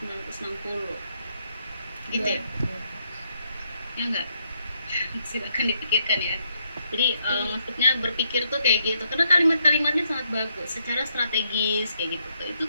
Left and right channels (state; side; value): inverted; both; correlation -0.76